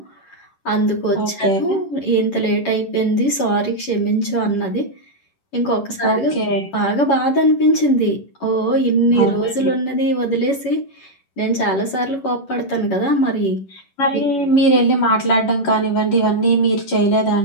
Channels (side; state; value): right; late; 11 ms